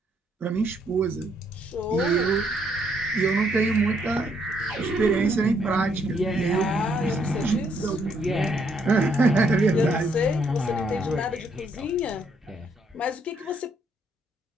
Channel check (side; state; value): both; normal; correlation 0.71